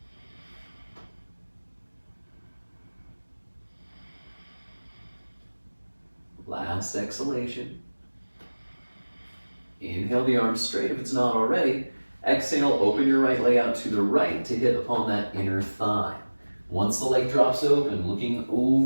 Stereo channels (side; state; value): both; inverted; correlation -1.00